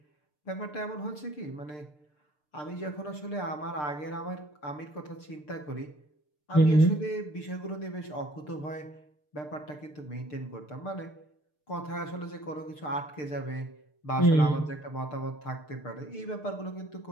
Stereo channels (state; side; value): late; right; 6.7 ms